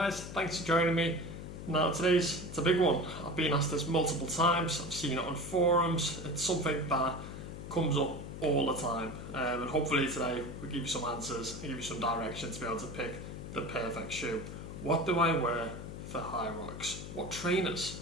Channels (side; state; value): left; noise; hum, 10 dB below the sound